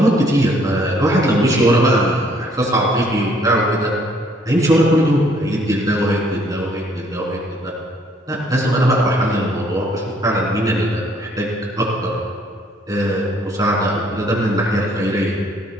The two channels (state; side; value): normal; both; correlation 0.64